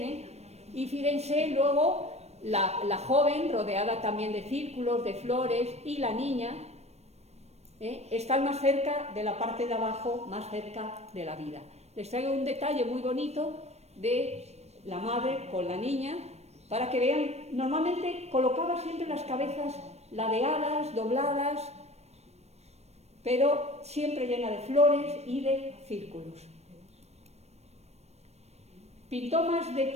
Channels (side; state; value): left; late; 0.31 ms